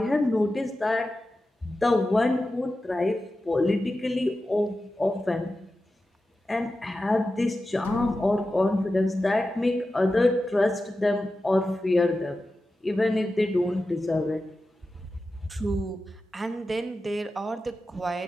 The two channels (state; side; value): normal; both; correlation 0.93